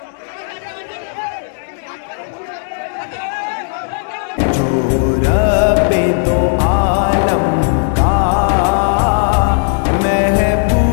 जो रब्बे दो आलम का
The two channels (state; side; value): silent; right; digital silence